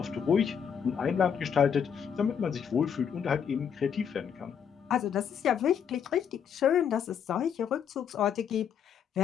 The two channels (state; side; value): quieter; right; 7.7 dB